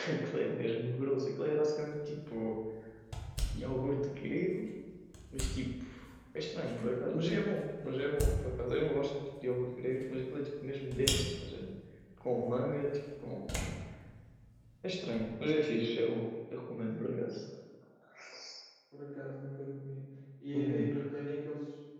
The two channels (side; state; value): both; identical; correlation 1.00